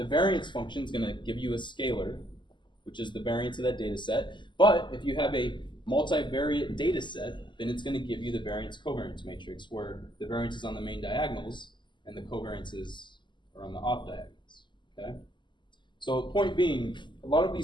variance function is going to give you a scalar, which is the variance of that data set. But if you have a multivariate data set, then it's going to give you the variance covariance matrix, where the variance is on the main diagonals and the covariances are on the off diagonals. Okay? So point being, a lot of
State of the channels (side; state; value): right; late; 0.22 ms